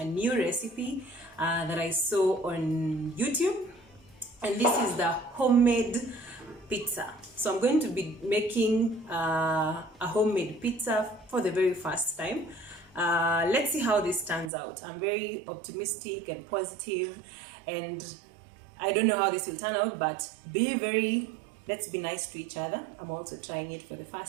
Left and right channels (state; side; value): drops out; left; at 14.5 s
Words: new recipe that I saw on YouTube. And this is the homemade pizza. So I'm going to be making a homemade pizza for the very first time. Let's see how this turns out. I'm very optimistic and positive, and I don't know how this will turn out, but let's be nice to each other. I'm also trying it for the